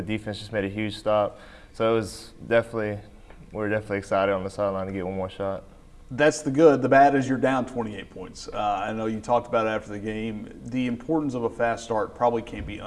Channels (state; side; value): identical; both; correlation 1.00